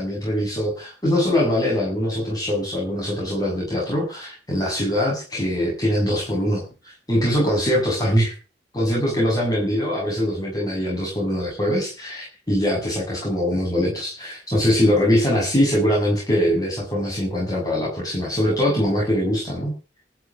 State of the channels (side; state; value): both; normal; correlation 0.66